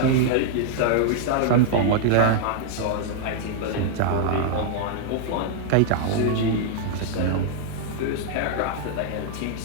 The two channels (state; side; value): different; both; correlation -0.01